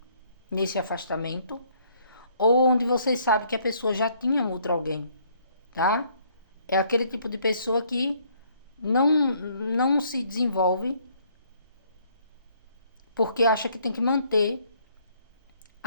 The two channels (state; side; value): inverted; both; correlation -0.65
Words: nesse afastamento, ou onde vocês sabem que a pessoa já tinha um outro alguém, tá? É aquele tipo de pessoa que não se desenvolve porque acha que tem que manter